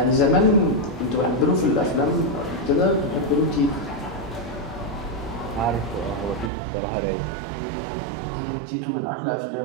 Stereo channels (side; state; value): left; drops out; at 6.5 s